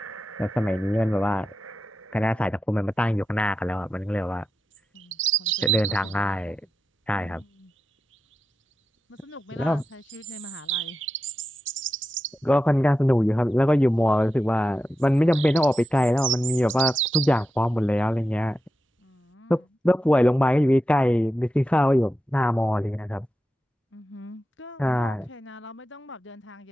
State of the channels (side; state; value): both; normal; correlation 0.90